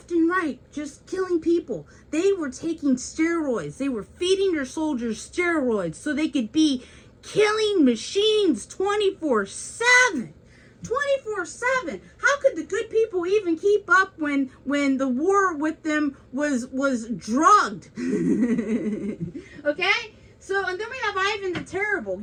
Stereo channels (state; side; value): identical; both; correlation 1.00